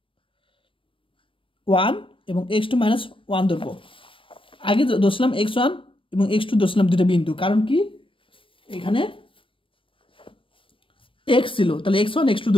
1 এবং x2 মাইনাস 1 ধরবো। আগে ধরছিলাম x1 এবং x2 ধরছিলাম দুটো বিন্দু, কারণ কি এখানে x ছিল, তাহলে x1 x2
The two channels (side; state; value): right; late; 0.25 ms